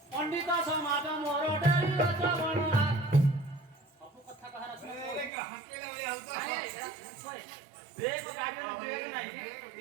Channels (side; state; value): left; drops out; at 5.3 s